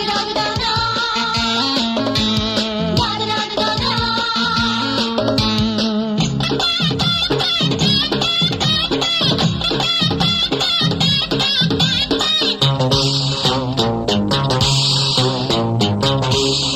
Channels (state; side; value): identical; both; correlation 1.00